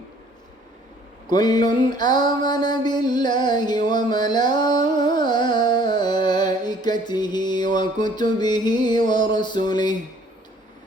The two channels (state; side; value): normal; both; correlation 0.57